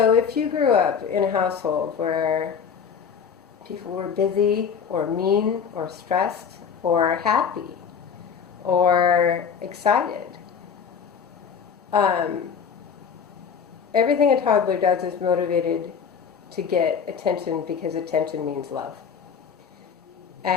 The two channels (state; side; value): quieter; right; 6.9 dB